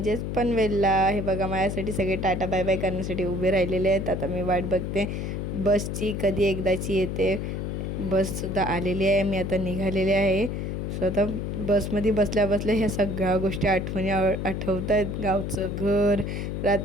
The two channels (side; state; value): left; noise; hum, 3 dB below the sound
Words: पनवेलला. हे बघा, माझ्यासाठी सगळे टाटा बाय बाय करण्यासाठी उभे राहिलेले आहेत. आता मी वाट बघते बसची, कधी एकदाची येते. बससुद्धा आलेली आहे, मी आता निघालेले आहे. सो आता बसमध्ये बसल्या बसल्या ह्या सगळ्या गोष्टी आठवत आहेत. गावचं घर,